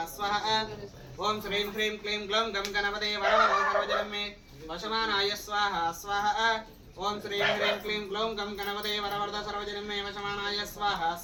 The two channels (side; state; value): both; identical; correlation 1.00